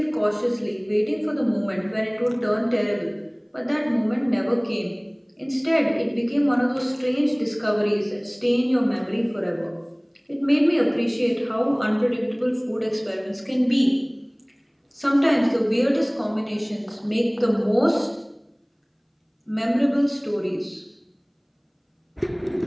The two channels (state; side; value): identical; both; correlation 1.00